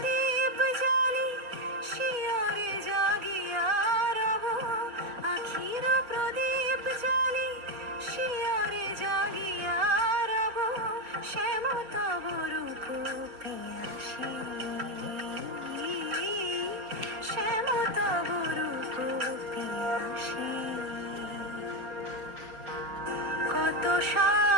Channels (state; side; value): late; left; 4.6 ms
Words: জ্বালি শিয়রে জাগিয়া রব, আখির প্রদীপ জ্বালি শিয়রে জাগিয়া রব, শ্যাম তব রূপ পিয়াসী, শ্যাম তব রূপ পিয়াসী। কত